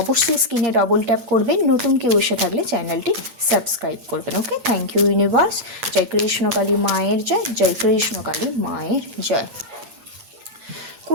स्क्रिने डबल टैप करबेन। नतून केउ एसे थाकले चैनलटी सबस्क्राइब करबेन। Okay, thank you universe. जय कृष्ण काली मायेर जय, जय कृष्ण काली मायेर जय।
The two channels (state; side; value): late; left; 8.6 ms